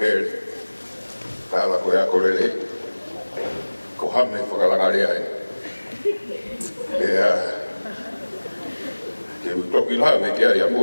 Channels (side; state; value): both; inverted; correlation -1.00